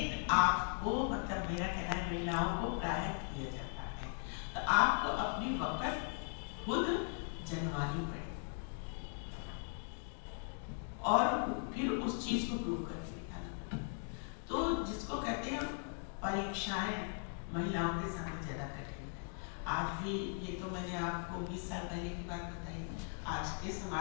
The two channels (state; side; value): silent; right; 52 dB below the other